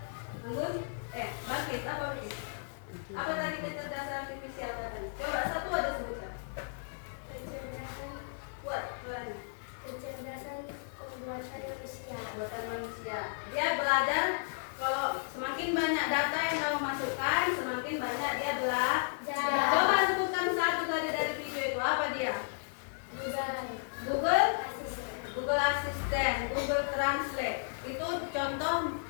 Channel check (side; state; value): right; silent; digital silence